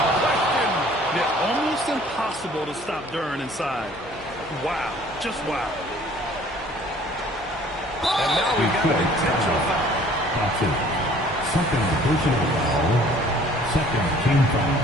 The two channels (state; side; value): noise; left; hum, 24 dB below the sound